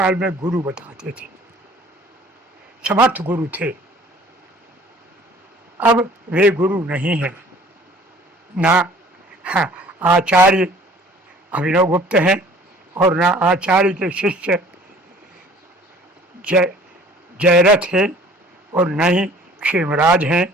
में गुरु बताते थे, समर्थ गुरु थे। अब वे गुरु नहीं हैं, ना आचार्य अभिनव गुप्त हैं और ना आचार्य के शिष्य जयरथ हैं, और न ही क्षेमराज हैं,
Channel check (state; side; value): normal; both; correlation 0.51